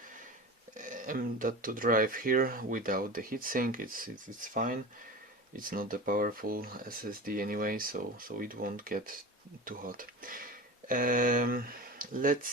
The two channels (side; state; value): both; normal; correlation 0.30